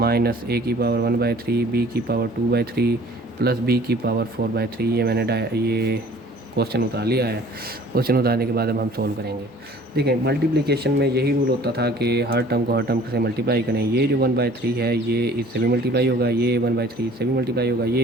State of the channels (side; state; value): both; normal; correlation 0.51